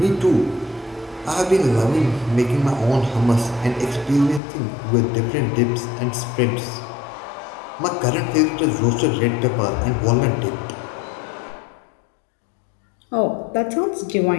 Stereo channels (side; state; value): right; drops out; at 4.4 s